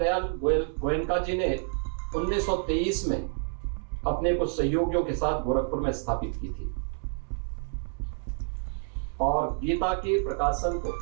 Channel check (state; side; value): silent; left; 59 dB below the other